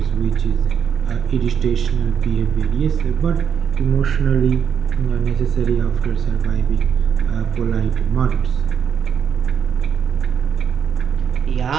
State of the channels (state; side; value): quieter; left; 7.5 dB